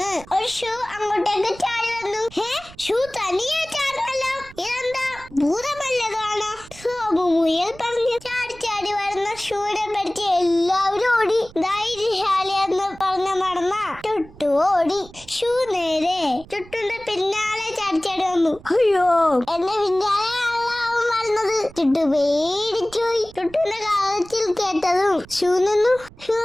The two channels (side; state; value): right; noise; rumble, 21 dB below the sound